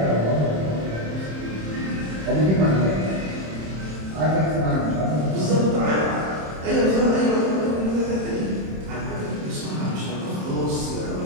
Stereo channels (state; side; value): late; left; 26 ms